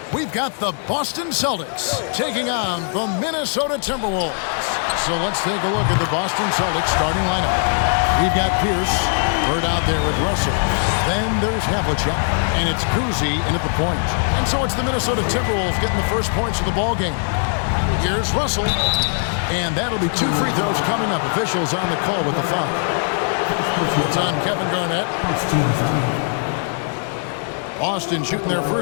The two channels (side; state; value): right; silent; 60 dB below the other